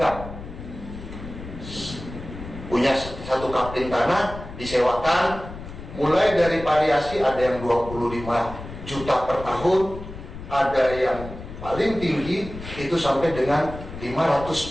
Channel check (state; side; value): noise; left; rumble, 12 dB below the sound